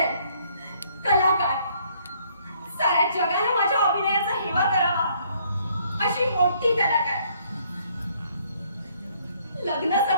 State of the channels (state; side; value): inverted; both; correlation -0.65